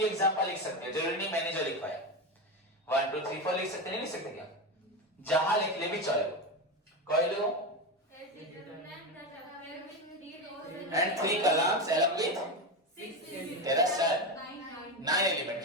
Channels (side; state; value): both; normal; correlation 0.17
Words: एग्जाम्पल लिख सकते हो, जरूरी नहीं मैंने जो लिखवाया 1 2 3 4 लिख सकते, नहीं लिख सकते क्या? जहां लिख ले भी चलो, कोई लो। एंड 3 कॉलम्स along with तेरा सर 9 एलिमेंट।